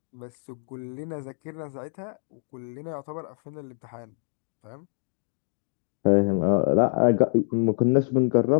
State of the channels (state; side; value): silent; right; digital silence